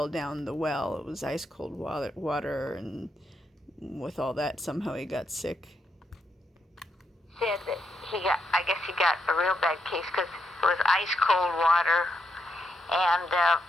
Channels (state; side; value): normal; both; correlation 0.80